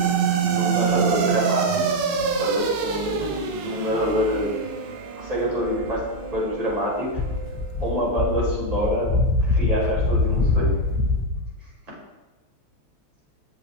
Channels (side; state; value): left; late; 12 ms